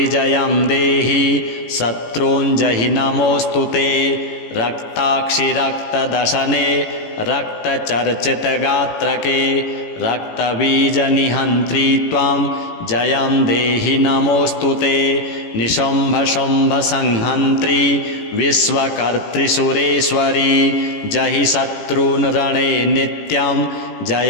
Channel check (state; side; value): late; right; 18 ms